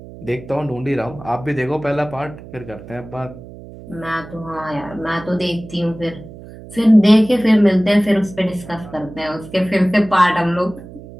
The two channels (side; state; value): right; noise; hum, 16 dB below the sound